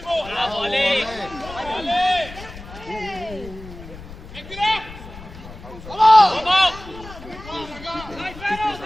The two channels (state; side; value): noise; left; rumble, 15 dB below the sound